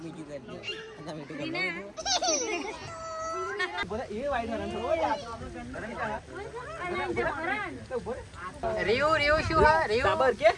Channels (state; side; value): identical; both; correlation 1.00